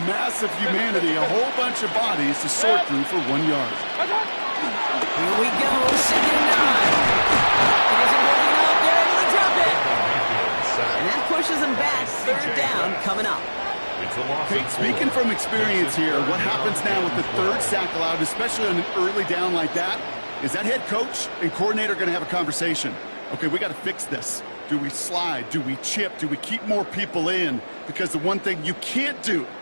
massive humanity, a whole bunch of bodies to sort through for 1 yard. Here we go, 2nd and 9. It isn't working out, they're able to drop it. And that pushes them back, 3rd down coming up. Kate, speaking from experience here, what happens now with the 3rd sack allowed, especially on an early down like that, is that head coach and coordinator going to have a conversation? Okay, we got to fix this. Do we slide? Do we chip? Do we keep more people in? Because the one thing you can't do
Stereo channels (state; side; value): inverted; both; correlation -1.00